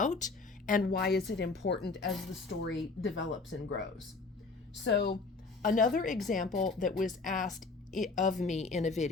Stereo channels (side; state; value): right; quieter; 4.0 dB